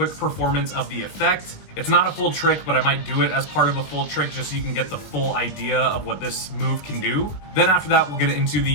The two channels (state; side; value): late; right; 20 ms